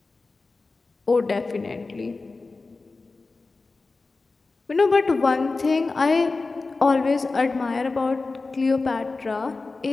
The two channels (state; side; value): quieter; right; 3.7 dB